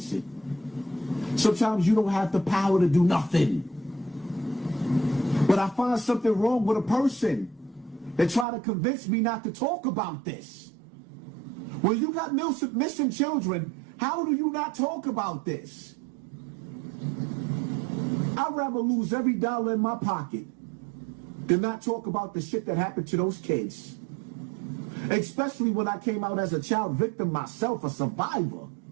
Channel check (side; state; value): left; drops out; at 8.5 s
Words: it. Sometimes you don't have the power to do nothing. But I find something wrong with a person that try to convince me not to talk about this. When you got missing children, how do you not talk about this? I'd rather lose every dollar in my pocket than not talk about the shit that happened to those kids. Especially when I came out as a child victim myself, a survivor.